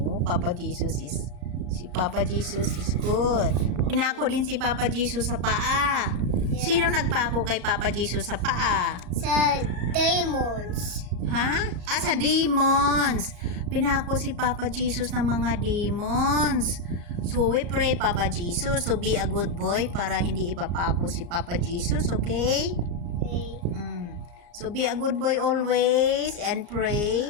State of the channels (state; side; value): late; left; 34 ms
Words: si Papa Jesus is good. Pinako din si Papa Jesus sa paa. Yeah. Sino nagpako kay Papa Jesus sa paa? Sa demons. Sa demons. Pinako si Papa Jesus ng mga demons. So, we pray, Papa Jesus. So, be a good boy para hindi ipapako si Papa Jesus, okay? Okay. So, be a good boy always and